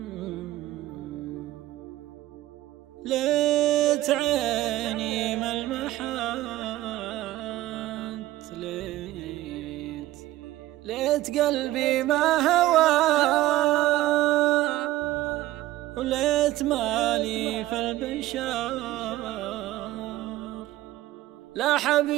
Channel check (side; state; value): left; quieter; 15.9 dB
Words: عيني ملمحات، ليت قلبي ما هوى، وليت مالي في البشار، لا